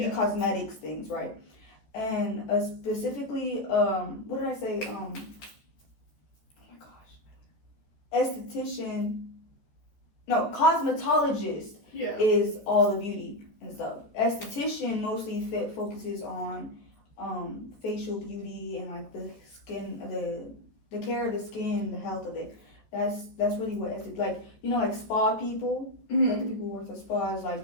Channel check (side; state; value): right; late; 13 ms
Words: cosmetics things, right? And specifically, what did I say? Oh my gosh, cosmetologist is all the beauty and stuff. Esthetician mostly focuses on facial beauty and like the skin, the care of the skin, the health of it. That's really what like spa people, like the people who work at spas,